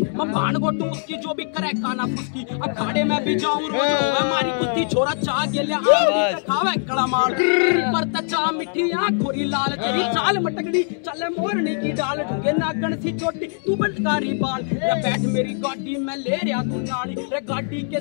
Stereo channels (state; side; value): silent; right; 64 dB below the other